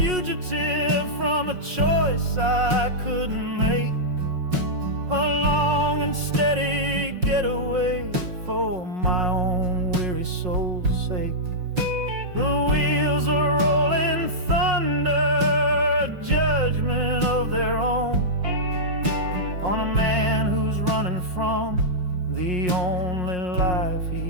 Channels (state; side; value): late; left; 5.5 ms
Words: from a choice I couldn't make, a long and steady getaway for my own weary soul's sake. The wheels are rolling thunder, a judgment of their own, on a man who's running from the only life